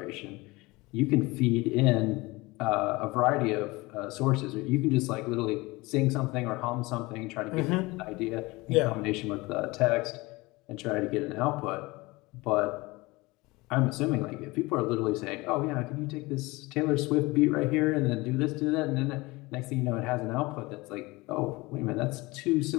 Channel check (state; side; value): quieter; right; 22.6 dB